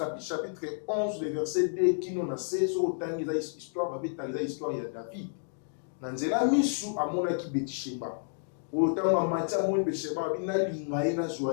chapitre 11, le verset 2, qui nous a fait, sur le temps, il y a histoire, il y a David. Nanzela misu amona ki Betisheba. Au temps où Matia moni Betisheba, bina lingaye na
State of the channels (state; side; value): silent; right; digital silence